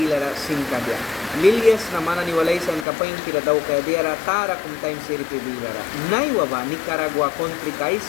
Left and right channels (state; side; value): drops out; right; at 2.9 s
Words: singkadya lilyas na manani walaysan kapain kira daw kaya diara tara kum time siri pibilara naiwa ba Nicaragua country kais